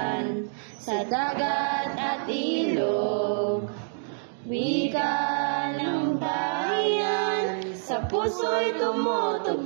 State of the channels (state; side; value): silent; left; digital silence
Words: sa dagat at ilog, wika ng bayan, sa puso'y